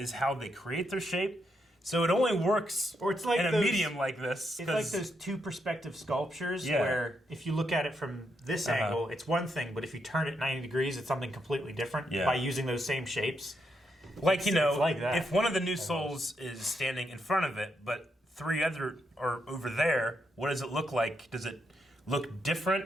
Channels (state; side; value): normal; both; correlation 0.80